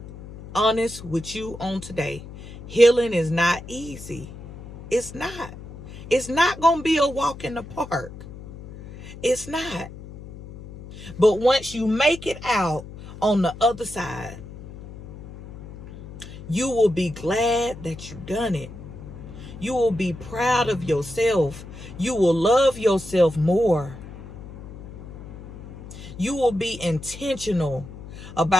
honest with you on today. Healing is not easy. It's not. It's not going to be a walk in the park. It's not. But once you make it out on the other side, you will be glad that you've done it. You will be proud of yourself. You will love yourself more. You will be intentional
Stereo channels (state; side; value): noise; left; hum, 14 dB below the sound